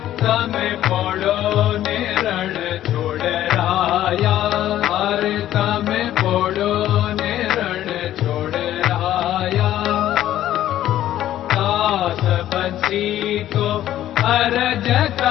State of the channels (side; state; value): right; quieter; 12.7 dB